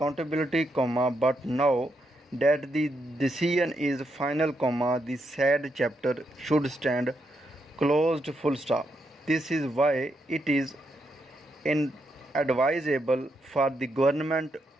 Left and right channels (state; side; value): normal; both; correlation 0.80